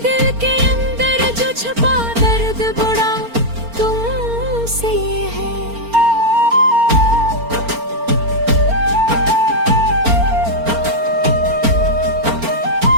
दिल के अंदर जो छुपा दर्द बड़ा तुमसे है।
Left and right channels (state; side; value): late; left; 4.4 ms